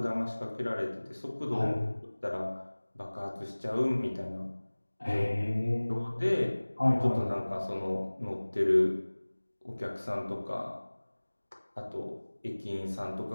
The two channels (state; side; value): inverted; both; correlation -1.00